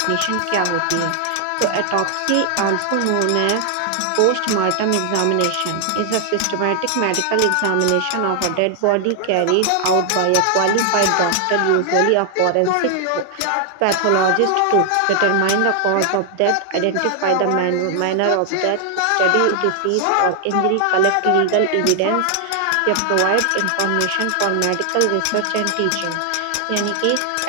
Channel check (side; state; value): both; different; correlation 0.00